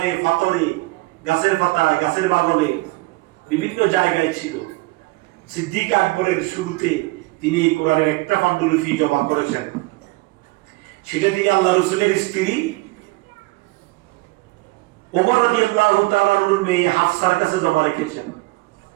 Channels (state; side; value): quieter; left; 22.5 dB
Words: পাথরে, গাছের পাতায়, গাছের বাগানে, বিভিন্ন জায়গায় ছিল। সিদ্দিক আকবরের শুরুতে তিনি এই কোরআনের একটা পান্ডুলিপি জমা করেছেন। সেটা তিনি আল্লাহ রাসূলের স্ত্রী ওমর রাদিয়াল্লাহু তাআলা আনহুর মেয়ে হাফসার কাছে জমা রেখেছেন।